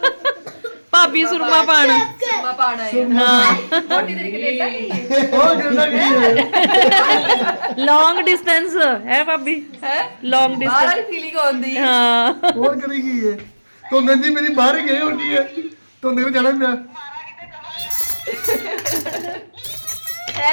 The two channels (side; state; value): both; inverted; correlation -1.00